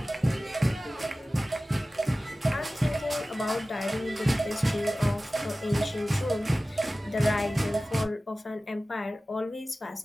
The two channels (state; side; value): normal; both; correlation 0.96